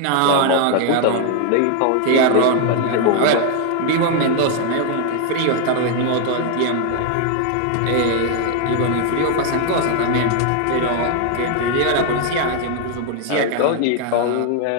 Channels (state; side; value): different; both; correlation 0.00